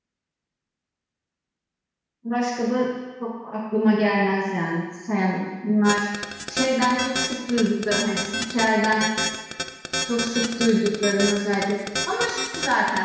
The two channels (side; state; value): both; identical; correlation 1.00